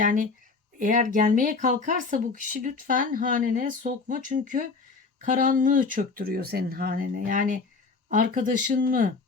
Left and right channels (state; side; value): quieter; right; 4.3 dB